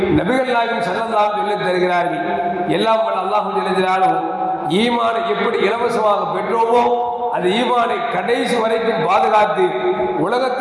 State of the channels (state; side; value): identical; both; correlation 1.00